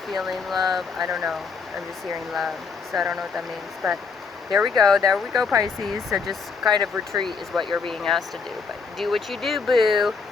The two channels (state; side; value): quieter; right; 5.0 dB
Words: feeling love. I don't know, I'm just hearing love, so I don't know what that means, but there we go, Pisces. So just kind of retreat is what you're being asked to do, but do what you do, boo.